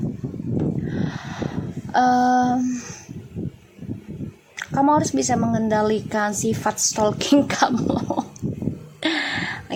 Kamu harus bisa mengendalikan sifat stalking kamu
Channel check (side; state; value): both; identical; correlation 1.00